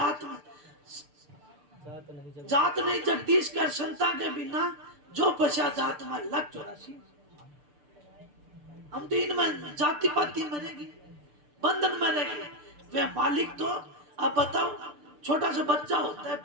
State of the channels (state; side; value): late; left; 6.8 ms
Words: में जात नहीं जगदीश कर संता के बिना जो पछा जात में लग 84। हम तो इनमें जाति पाति में रहेंगे, बंधन में रहेंगे। वे मालिक तो अब बताओ, छोटा सा बच्चा होता है